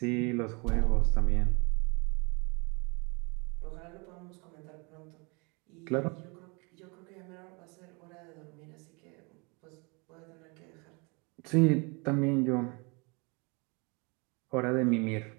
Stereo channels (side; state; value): left; quieter; 30.3 dB